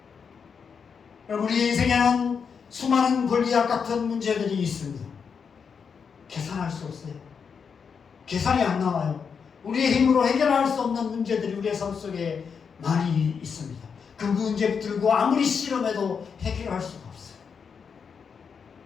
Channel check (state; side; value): quieter; right; 6.2 dB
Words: 여러분, 우리 인생에는 수많은 권리학 같은 문제들이 있습니다. 계산할 수 없어요. 계산이 안 나와요. 우리의 힘으로 해결할 수 없는 문제들이 우리의 삶 속에 많이 있습니다. 그 문제 들고 아무리 실험해도 해결할 수가 없어요.